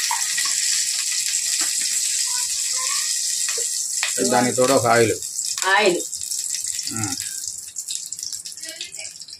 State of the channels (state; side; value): identical; both; correlation 1.00